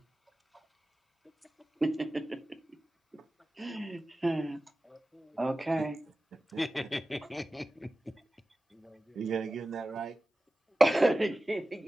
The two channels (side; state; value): both; normal; correlation 0.95